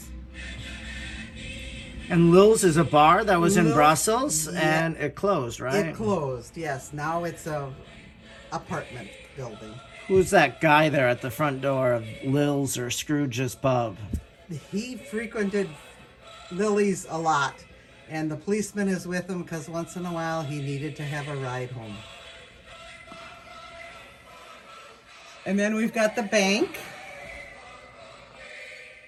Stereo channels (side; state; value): both; identical; correlation 1.00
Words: And Lil's is a bar that was in Brussels, and it closed, right? It closed, yes. Now it's a apartment building. Who's that guy there at the front door of Lil's or Scrooge's Pub? He frequented Lily's a lot, and the policeman is with him because once in a while he needed to have a ride home. And then we've got the bank,